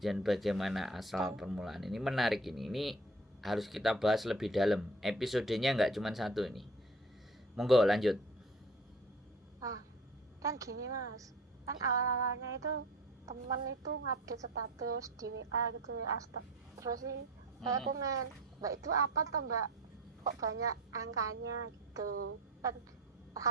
bagaimana asal permulaan. Ini menarik ini harus kita bahas lebih dalam. Episodenya nggak cuma satu ini. Monggo lanjut. Kan gini Mas, kan awal-awalnya itu temen itu ngupdate status di WA gitu ya, terus sih saya komen, Mbak itu apa toh Mbak, kok banyak angkanya gitu kan,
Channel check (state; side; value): normal; both; correlation 0.42